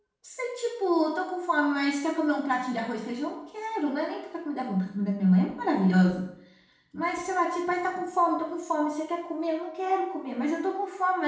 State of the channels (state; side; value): identical; both; correlation 1.00